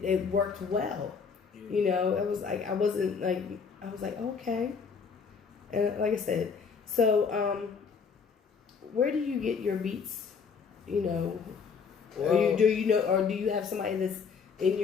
worked well. Yeah. It was like I was like okay, and like I said, so where do you get your beats? Well, or do you have somebody that's in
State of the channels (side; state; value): right; quieter; 5.8 dB